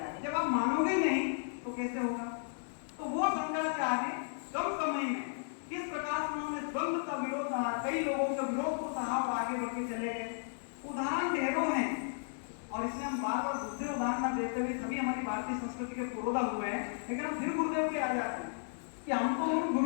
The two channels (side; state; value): right; silent; digital silence